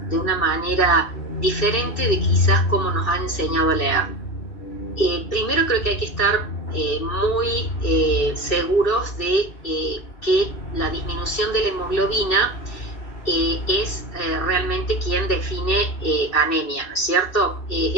de una manera diferente de quizás como nos han enseñado a leer. Primero creo que hay que estar muy seguros de que la disminución de la hemoglobina es realmente quien define anemia, ¿no es cierto?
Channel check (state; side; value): late; right; 2.6 ms